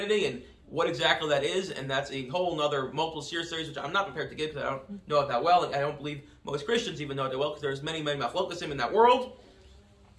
and what exactly that is, and that's a whole other multiple series, which I'm not prepared to give because I don't know it that well, and I don't believe most Christians even know it that well because there's many machlokasim in that world.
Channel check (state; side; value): identical; both; correlation 1.00